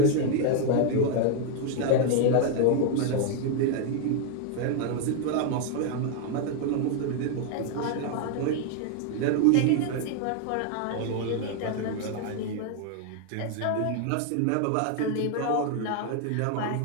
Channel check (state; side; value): different; both; correlation 0.00